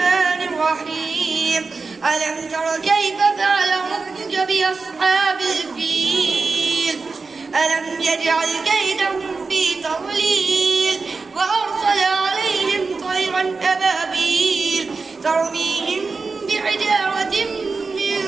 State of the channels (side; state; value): left; quieter; 4.3 dB